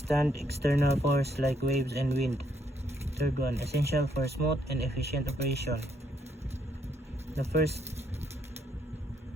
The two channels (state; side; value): normal; both; correlation 0.72